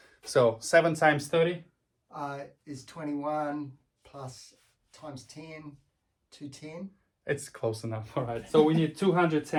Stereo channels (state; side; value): identical; both; correlation 1.00